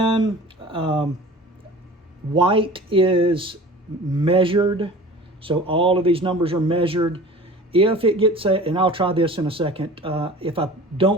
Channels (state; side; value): normal; both; correlation 0.41